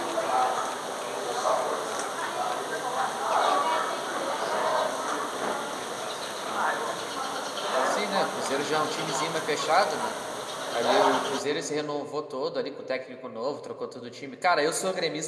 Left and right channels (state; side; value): identical; both; correlation 1.00